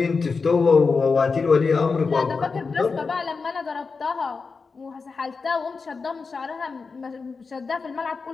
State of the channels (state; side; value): quieter; right; 4.7 dB